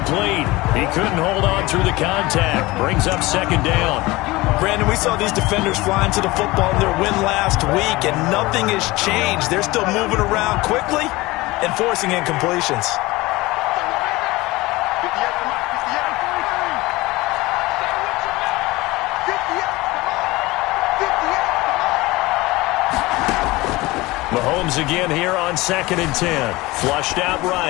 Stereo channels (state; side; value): quieter; right; 20.8 dB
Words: He couldn't hold on through the contact. Brings up 2nd down. Brandon, we saw these defenders flying to the football in their win last week, and nothing has changed. They're still moving around quickly and forcing incompletions. Mahomes again here on 2nd and 10. Flushed out